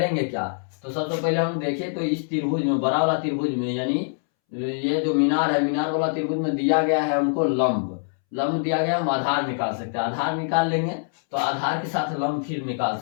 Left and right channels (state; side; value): silent; right; 62 dB below the other